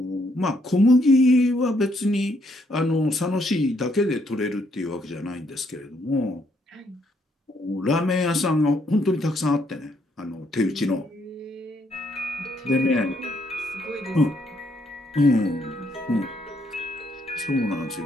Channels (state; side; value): normal; both; correlation 0.72